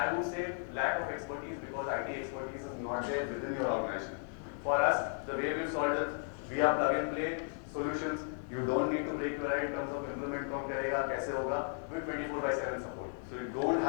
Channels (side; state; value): right; silent; 54 dB below the other